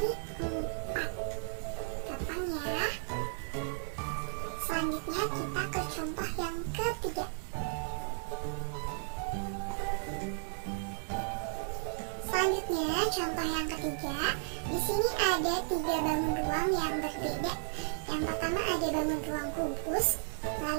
4. Gampang ya. Selanjutnya kita ke contoh yang ketiga. Selanjutnya contoh yang ketiga. Di sini ada 3 bangun ruang yang berbeda. Yang pertama ada bangun ruang kubus,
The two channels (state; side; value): silent; left; digital silence